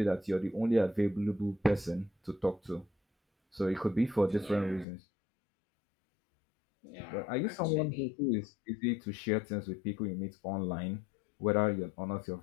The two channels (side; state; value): right; drops out; at 4.9 s